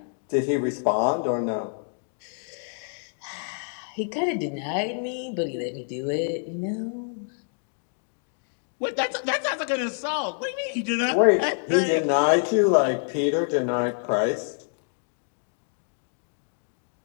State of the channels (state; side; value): silent; right; 60 dB below the other